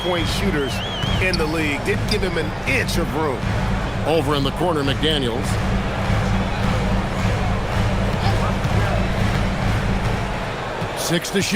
shooters in the league. Didn't give him an inch of room. Over in the corner, McDaniels. Six to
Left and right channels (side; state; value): both; identical; correlation 1.00